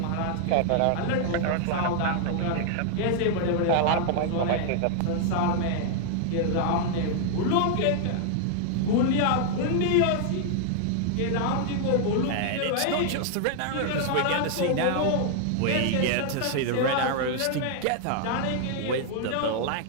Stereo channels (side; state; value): both; different; correlation 0.00